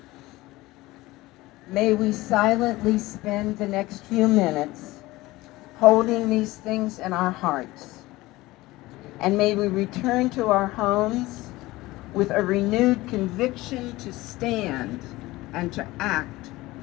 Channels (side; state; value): right; quieter; 19.2 dB